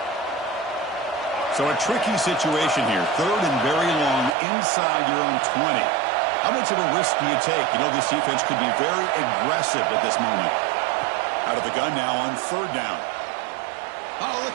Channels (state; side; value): drops out; left; at 4.4 s